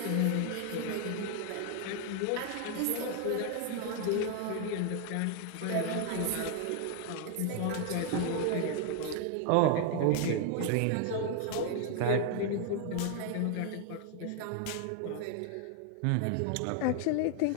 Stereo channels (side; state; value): both; different; correlation 0.00